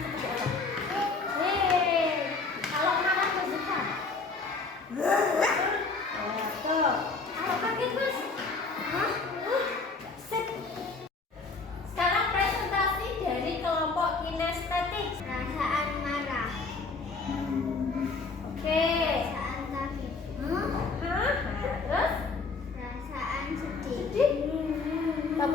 apa? Kalau marah bersuka. Tuh. Kalau kaget Mas? Sip. Sekarang presentasi dari kelompok kinestetik. Perasaan marah. Oke. Perasaan kaget. Terus? Perasaan sedih.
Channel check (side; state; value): right; quieter; 4.1 dB